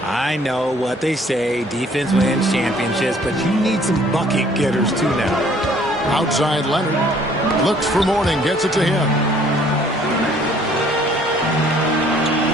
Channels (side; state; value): both; normal; correlation 0.59